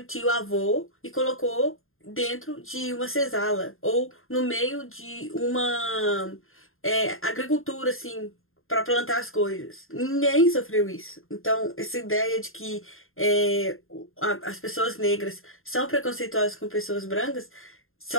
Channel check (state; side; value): late; right; 0.61 ms